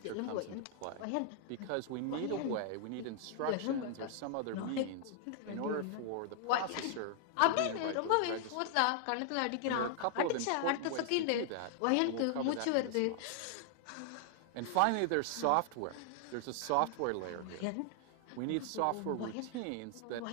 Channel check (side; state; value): both; different; correlation 0.00